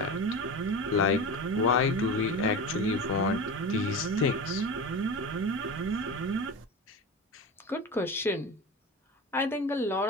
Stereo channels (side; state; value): both; normal; correlation 0.27